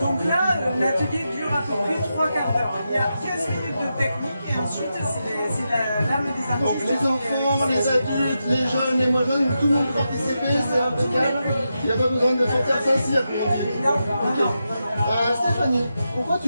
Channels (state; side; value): inverted; both; correlation -0.87